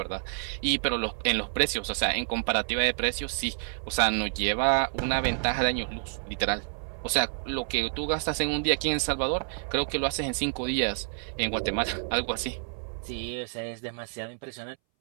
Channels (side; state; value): left; silent; 59 dB below the other